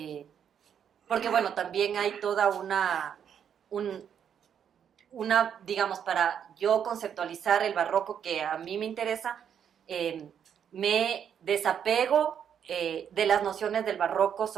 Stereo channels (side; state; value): left; quieter; 8.4 dB